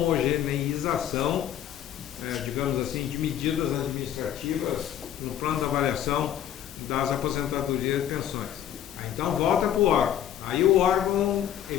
digamos assim, de medidas administrativas no plano de avaliação das aposentadorias e pensões. Então volta para o órgão. Aí o órgão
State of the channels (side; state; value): right; quieter; 10.6 dB